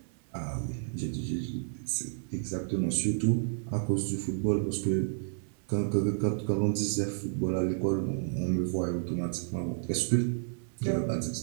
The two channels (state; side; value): silent; left; 57 dB below the other